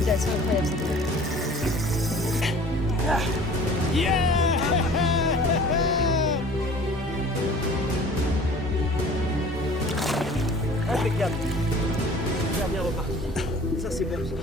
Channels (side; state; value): both; normal; correlation 0.47